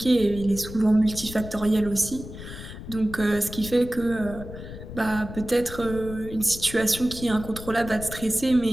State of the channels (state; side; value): noise; left; rumble, 12 dB below the sound